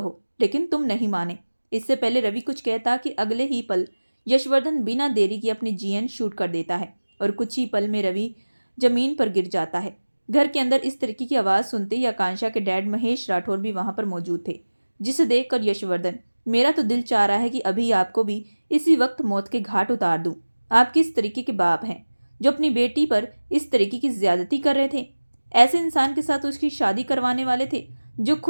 लेकिन तुम नहीं माने। इससे पहले रवि कुछ कहता कि अगले ही पल यशवर्धन बिना देरी के अपनी जीएन शूट कर देता है और कुछ ही पल में रवि जमीन पर गिर जाता है। घर के अंदर इस तरीके की आवाज़ सुनते ही आकांक्षा के डैड महेश राठौर भी वहां पर मौजूद थे, जिसे देखकर यशवर्धन, मेरा तो दिल चाह रहा है कि अभी आपको भी इसी वक्त मौत के घाट उतार दूं। आप किस तरीके के बाप हैं जो अपनी बेटी पर इस तरीके की ज्यादती कर रहे थे? ऐसे इंसान के साथ उसकी शादी करवाने वाले थे जो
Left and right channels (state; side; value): inverted; both; correlation -1.00